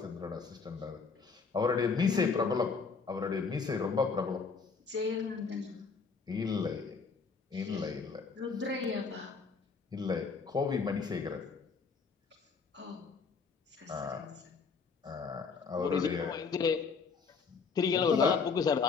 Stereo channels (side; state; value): right; quieter; 5.1 dB